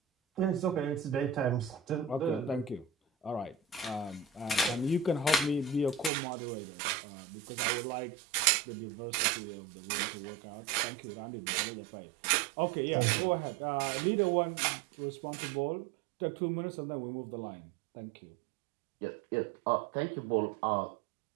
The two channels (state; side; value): drops out; left; at 6.1 s